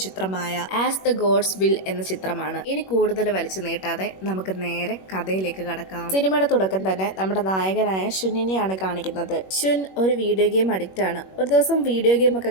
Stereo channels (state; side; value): late; right; 21 ms